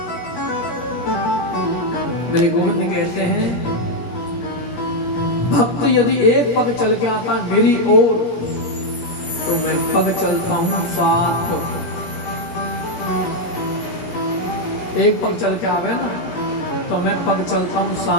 मेरे गोविंद कहते हैं भक्त यदि एक पग चल के आता है मेरी ओर, तो मैं पग चलता हूं साथ। एक पग चल के आवे ना तो मैं पग चलता हूं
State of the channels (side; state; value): right; late; 17 ms